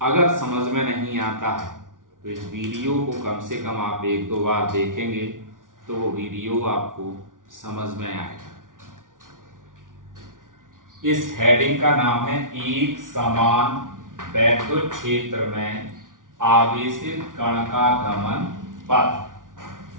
अगर समझ में नहीं आता है तो इस वीडियो को कम से कम आप एक दो बार देखेंगे तो वो वीडियो आपको समझ में आएगा। इस हेडिंग का नाम है एक समान वैद्युत क्षेत्र में आवेशित कण का गमन पथ।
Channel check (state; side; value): late; left; 0.88 ms